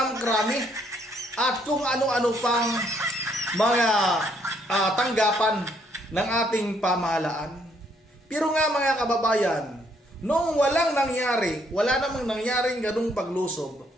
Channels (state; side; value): normal; both; correlation 0.69